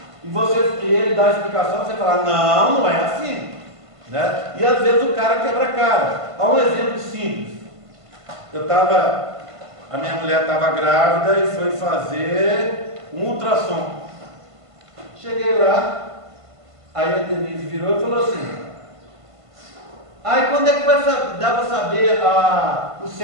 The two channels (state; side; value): late; left; 1.5 ms